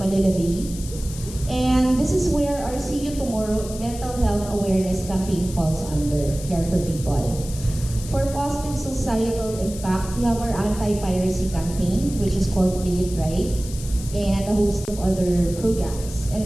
Bay. And this is where our See You Tomorrow mental health awareness campaign falls under, Care for People. For positive societal impact, we have our anti-piracy campaign, which is called Play It Right, and a host of other programs. And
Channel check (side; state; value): left; noise; hiss, 14 dB below the sound